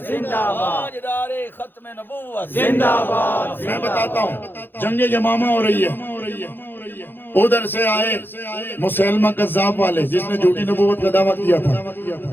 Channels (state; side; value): late; right; 0.098 ms